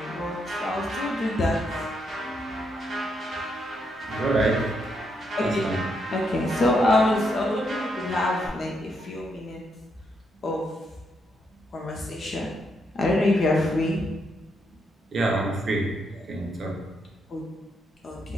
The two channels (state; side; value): normal; both; correlation 0.78